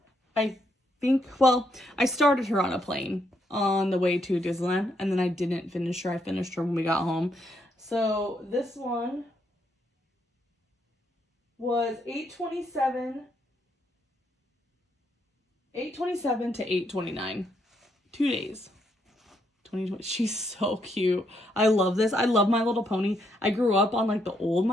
I started her on a plane on the way to Disneyland, and then I didn't finish her. I finished her when we got home. So this one was 8/27 to 8/29. 2 days. 2020. She's so cute. I love this. I love My Little Pony. I grew up on the old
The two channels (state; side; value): normal; both; correlation 0.76